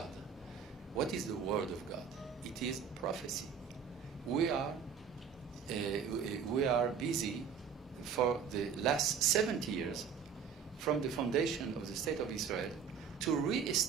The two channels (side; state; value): left; quieter; 6.8 dB